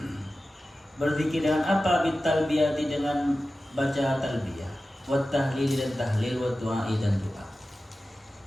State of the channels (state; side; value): normal; both; correlation 0.95